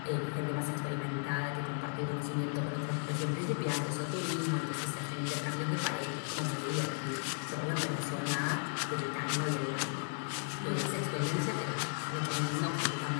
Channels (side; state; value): right; silent; 54 dB below the other